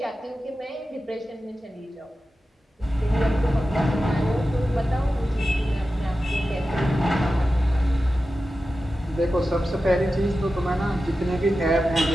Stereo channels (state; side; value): normal; both; correlation 0.93